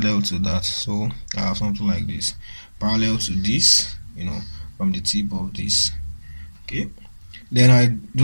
to that. So I have something like this, parallel to this, from the tip of this. Okay, then I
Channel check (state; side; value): inverted; both; correlation -1.00